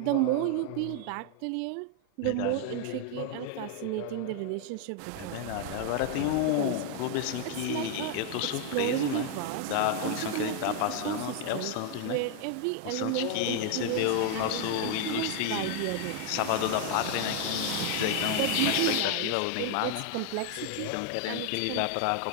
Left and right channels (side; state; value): both; different; correlation 0.00